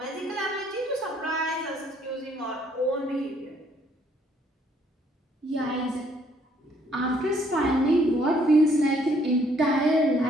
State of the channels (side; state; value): both; normal; correlation 0.66